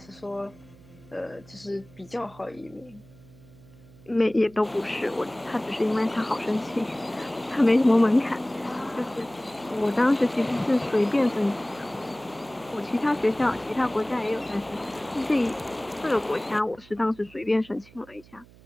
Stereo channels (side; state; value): right; noise; hum, 24 dB below the sound